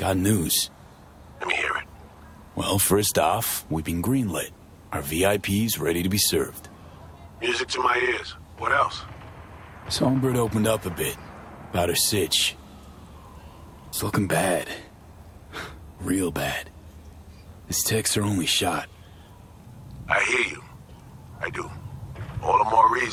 news. Let me hear it. Well, first off, we've been greenlit. Our VIP's ready to be served. Music to my ears. What else? Songbird opened up a bit about her sitch. It's looking bad. Real bad. This tech's her only shot. I hear you. I do. All the more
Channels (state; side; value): identical; both; correlation 1.00